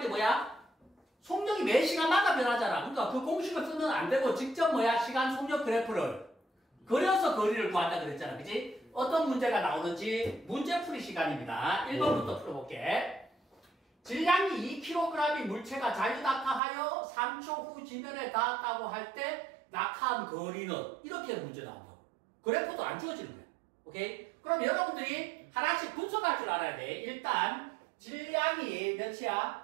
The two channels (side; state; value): left; drops out; at 16.6 s